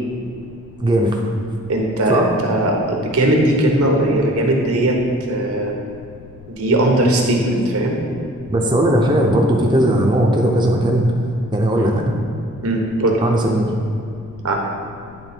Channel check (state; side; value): noise; left; rumble, 21 dB below the sound